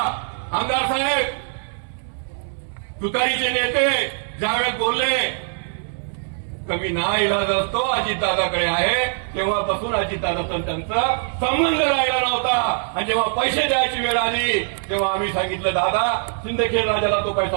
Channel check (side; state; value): left; silent; 64 dB below the other